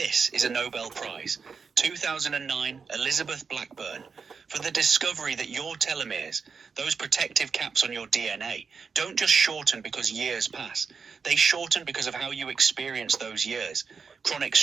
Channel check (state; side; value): quieter; left; 5.5 dB